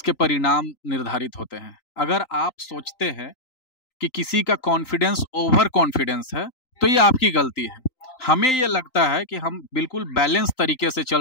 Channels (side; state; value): right; late; 3.9 ms